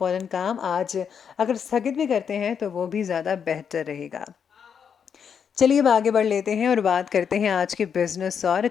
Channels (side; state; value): right; quieter; 7.3 dB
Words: काम आज अगर स्थगित भी करते हैं तो वो भी ज़्यादा बेहतर रहेगा। चलिए अब आगे बढ़ लेते हैं और बात करते हैं आज के बिजनेस और